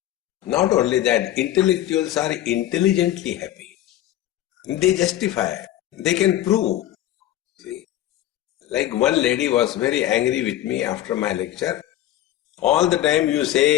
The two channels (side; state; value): right; quieter; 13.2 dB